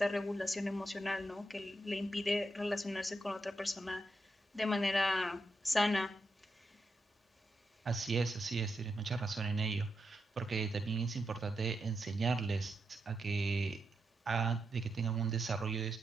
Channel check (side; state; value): both; normal; correlation 0.85